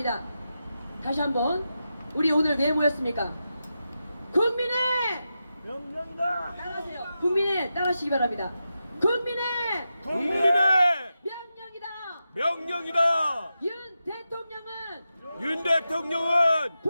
다시 한번 우리 오늘 왜 모였습니까? 국민의 명령다! 따라하세요. 국민의 따라하시기 바랍니다. 국민의 명령이다. 명령이다. 윤 대통령은 윤 대통령은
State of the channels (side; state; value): both; inverted; correlation -0.89